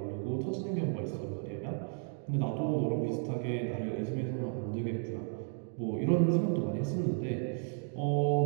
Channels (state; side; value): silent; left; 55 dB below the other